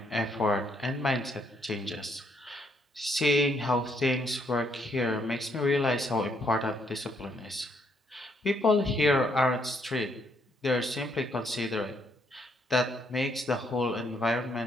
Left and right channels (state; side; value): normal; both; correlation 0.72